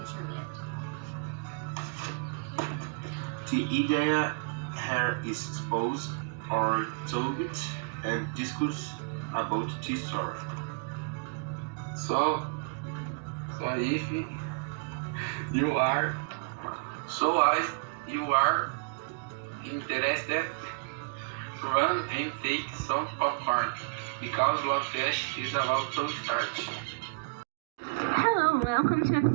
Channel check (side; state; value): left; quieter; 35.7 dB